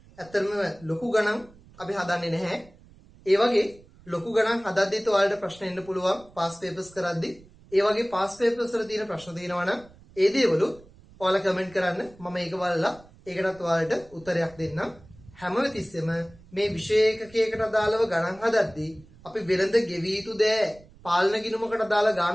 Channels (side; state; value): right; noise; rumble, 24 dB below the sound